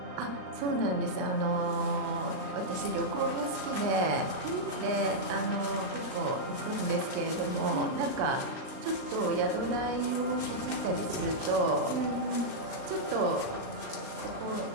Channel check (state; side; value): late; left; 39 ms